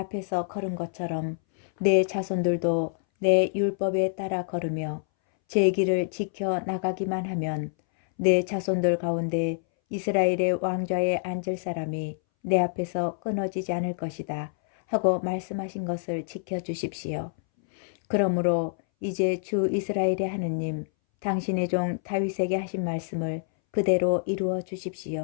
걸은 것처럼 내 자손들도 내 율법에 따라 걸으며 제 길을 지켜 나가기만 하면 내 자손들 가운데 이스라엘의 왕좌에 앉을 사람이 내 앞에서 끊어지지 않을 것이다 하고 말씀하신 것을 지켜주십시오. 그러므로 이제 주 이스라엘의 하느님, 당신의 종 다윗에게 하신 말씀을 그대로 이루어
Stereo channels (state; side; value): silent; right; 60 dB below the other